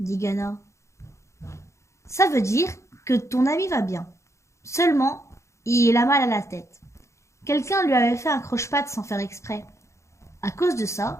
Ghana. Ça veut dire que ton ami va bien. Seulement, il a mal à la tête. Quelqu'un lui avait fait un croche-patte sans faire exprès. À cause de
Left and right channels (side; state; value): right; late; 0.14 ms